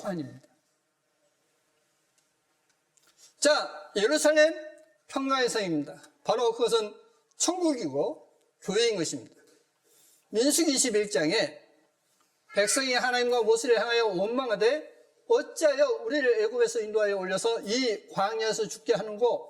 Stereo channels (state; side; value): identical; both; correlation 1.00